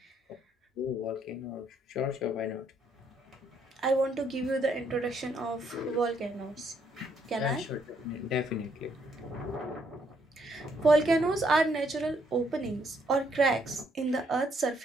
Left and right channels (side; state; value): both; normal; correlation 0.71